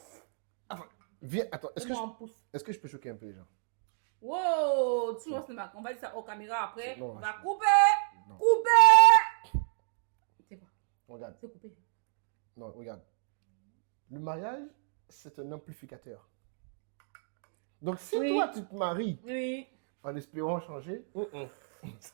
Viens, attends. Donne-moi un pouce. Est-ce que je peux choquer un peu les gens? Wow, tu vois, on va dire ça aux caméras après. Non, On va je- couper. Non. Couper. C'est quoi? Regarde. C'est coupé. Non, regarde. Le mariage, c'est un amplificateur. Donc, si Oui. toi, tu te maries Oui. en espérant changer,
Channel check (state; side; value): silent; left; digital silence